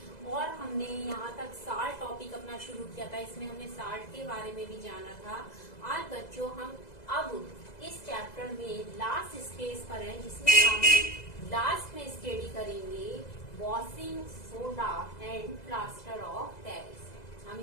और हमने यहाँ तक साल्ट टॉपिक अपना शुरू किया था। इसमें हमने साल्ट के बारे में भी जाना था। आज बच्चों हम अब इस चैप्टर में लास्ट स्टेज पर हैं, जिसमें हम लास्ट में स्टडी करेंगे washing soda and plaster of Paris. हम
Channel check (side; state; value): right; late; 2.0 ms